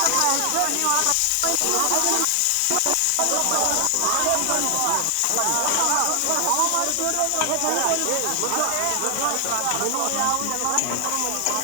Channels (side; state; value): both; different; correlation 0.00